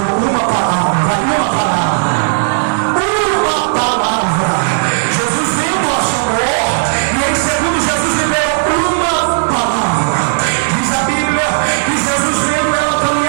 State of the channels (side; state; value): left; silent; digital silence